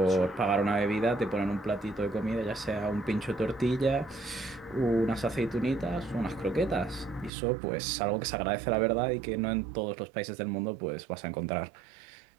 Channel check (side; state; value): left; drops out; at 7.3 s